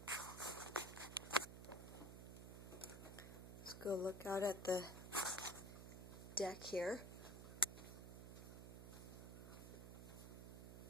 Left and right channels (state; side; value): noise; right; hum, 9 dB below the sound